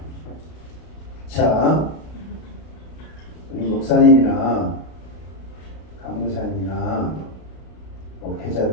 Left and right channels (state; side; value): late; right; 32 ms